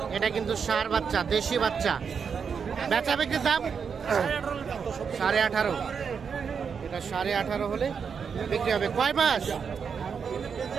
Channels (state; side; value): quieter; left; 6.4 dB